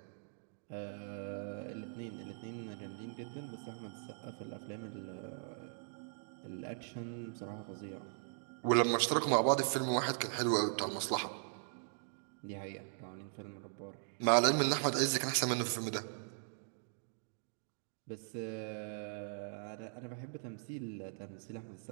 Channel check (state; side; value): silent; left; digital silence